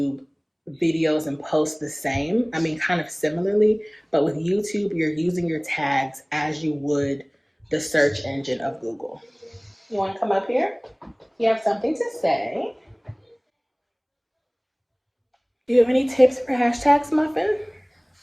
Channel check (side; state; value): both; identical; correlation 1.00